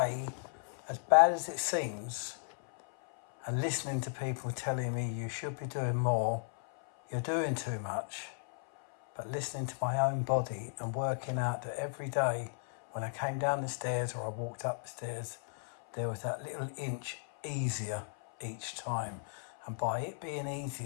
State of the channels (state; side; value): silent; right; 54 dB below the other